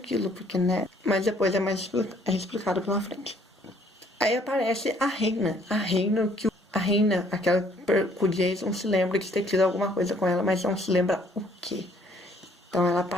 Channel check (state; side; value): normal; both; correlation 0.62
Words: porque, né? Mas depois é explicado pela frente. Aí aparece a Reina. A Reina, aquela que o Jason se lembra de ter tido alguma coisa com ela, mas não se lembra o quê. Então ela